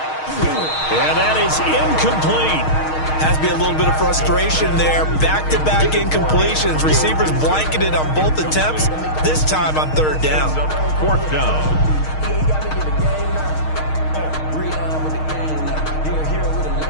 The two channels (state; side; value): late; right; 6.4 ms